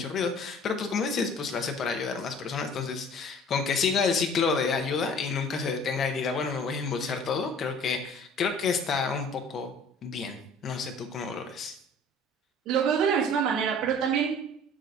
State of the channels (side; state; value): both; normal; correlation 0.49